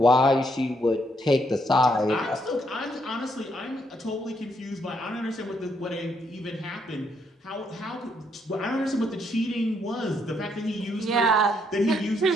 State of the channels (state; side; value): normal; both; correlation 0.73